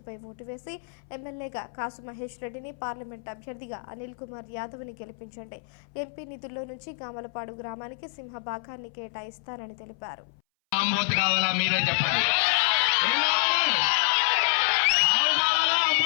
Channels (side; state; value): right; silent; 60 dB below the other